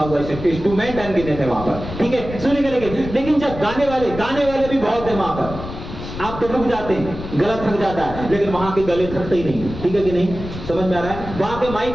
हुआ है, इंस्ट्रूमेंट अनगिनत है वहां पर, ठीक है, सुनेंगे। लेकिन जब गाने वाले भी बहुत है वहां पर, आप तो रुक जाते हैं, गला थक जाता है, लेकिन वहां के गले थकते ही नहीं, ठीक है कि नहीं? समझ में आ रहा है? वहां के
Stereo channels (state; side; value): noise; left; rumble, 10 dB below the sound